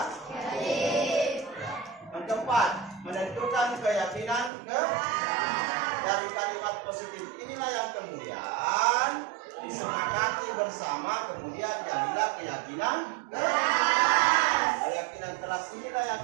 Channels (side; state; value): left; drops out; at 4.5 s